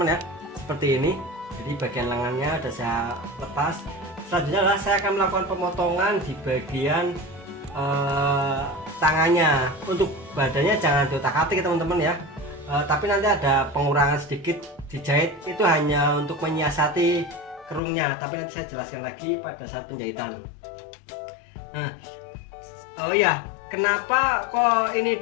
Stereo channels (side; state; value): right; drops out; at 17.8 s